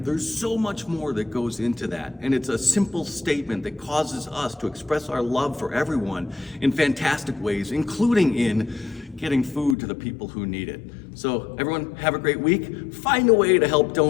there's so much more that goes into that. And it's a simple statement that causes us to express our love for everyone in fantastic ways, including in getting food to the people who need it. So everyone, have a great week. Find a way to help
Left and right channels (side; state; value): right; drops out; at 9.8 s